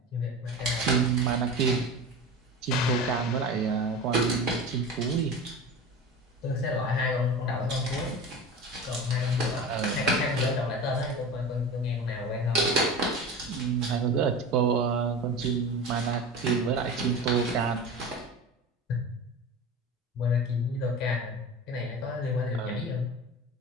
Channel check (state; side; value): normal; both; correlation 0.31